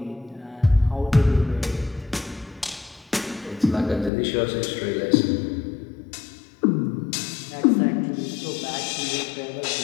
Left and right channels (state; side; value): drops out; right; at 4.1 s